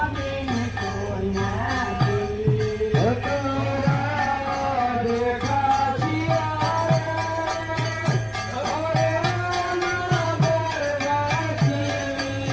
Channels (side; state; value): both; identical; correlation 1.00